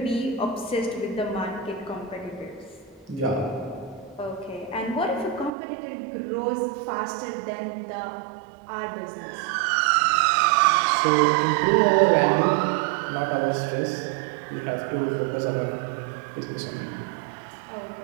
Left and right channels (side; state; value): left; drops out; at 5.5 s